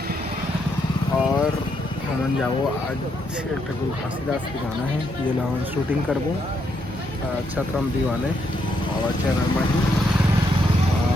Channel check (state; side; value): normal; both; correlation 0.77